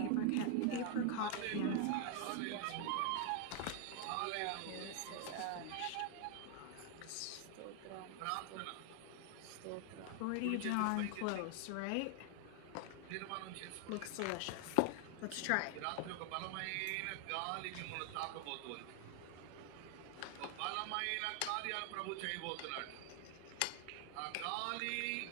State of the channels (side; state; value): both; different; correlation 0.00